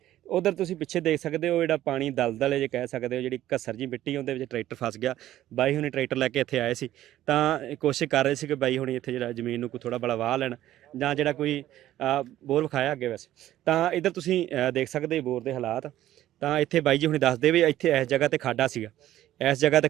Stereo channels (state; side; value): quieter; left; 13.6 dB